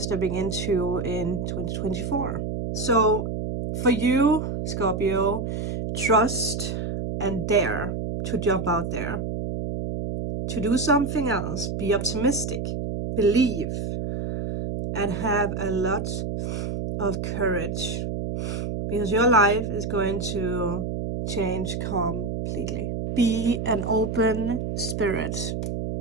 into in 2024. So for you, Scorpio, trust and dare to jump out there, to do something else, be optimistic, believe, and have a lot of courage, because your life is going to change completely. Be an open spirit.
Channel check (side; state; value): right; noise; hum, 3 dB below the sound